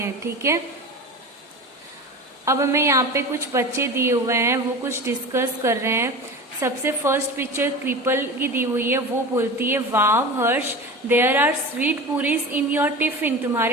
ठीक है, अब हमें यहाँ पे कुछ बच्चे दिए हुए हैं, वो कुछ डिस्कस कर रहे हैं। सबसे फर्स्ट पिक्चर क्रिपल की दी हुई है, वो बोलती है wow Harsh, there are sweet puris in your tiffin.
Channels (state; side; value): normal; both; correlation 0.31